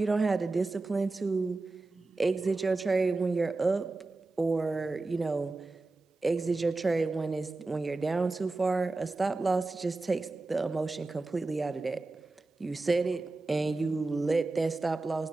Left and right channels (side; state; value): left; quieter; 3.4 dB